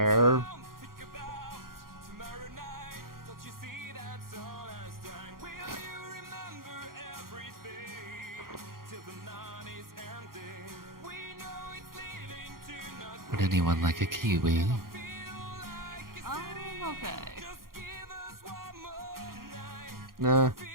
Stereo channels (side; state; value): left; late; 0.92 ms